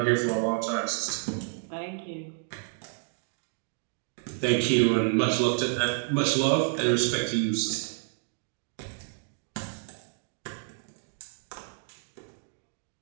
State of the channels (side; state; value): left; silent; 58 dB below the other